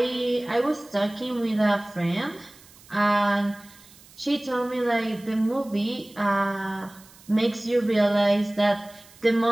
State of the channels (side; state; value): right; noise; hiss, 24 dB below the sound